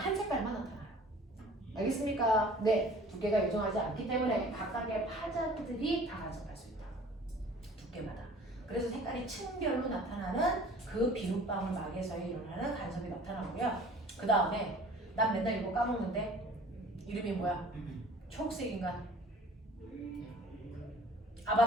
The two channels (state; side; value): normal; both; correlation 0.48